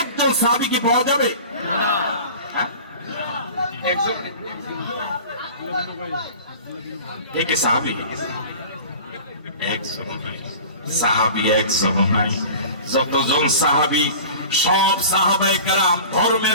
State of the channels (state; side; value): inverted; both; correlation -0.39